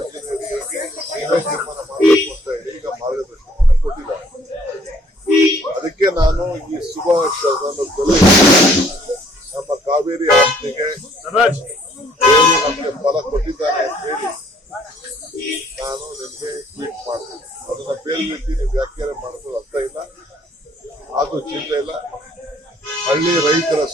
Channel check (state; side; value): normal; both; correlation 0.61